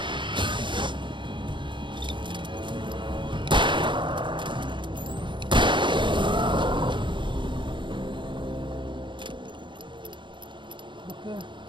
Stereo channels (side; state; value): left; late; 0.23 ms